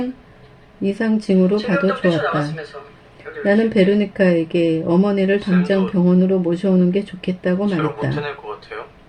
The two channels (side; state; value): both; identical; correlation 1.00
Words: 이상 징후로 봐도 좋았다. 나는 베로니카에게 어머니를 당장 병원으로 모셔오는 게 좋겠다고 못 말했다. 해낼 것 같아요.